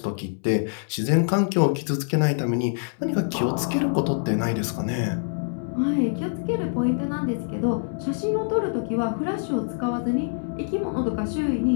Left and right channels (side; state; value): right; silent; 62 dB below the other